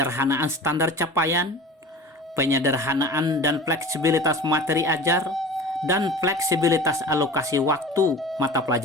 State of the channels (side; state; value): both; normal; correlation 0.38